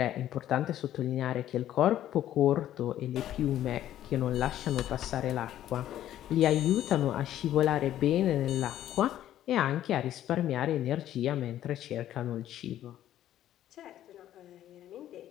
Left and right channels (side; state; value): right; quieter; 12.2 dB